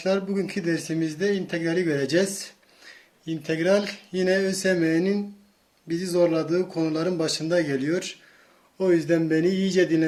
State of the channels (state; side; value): identical; both; correlation 1.00